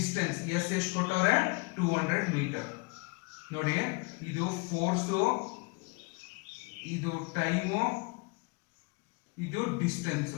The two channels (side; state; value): right; quieter; 29.3 dB